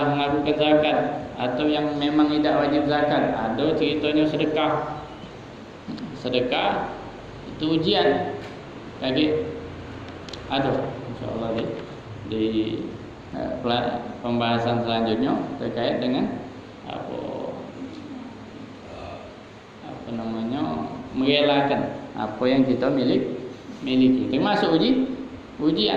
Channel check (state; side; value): identical; both; correlation 1.00